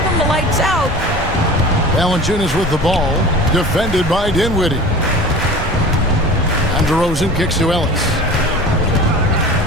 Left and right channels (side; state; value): both; normal; correlation 0.38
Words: him the lights out. Valanciunas with the ball, defended by Dinwiddie. And DeRozan kicks to Ellis.